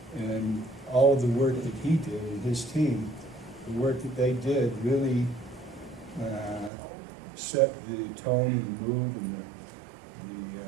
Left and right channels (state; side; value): drops out; left; at 6.7 s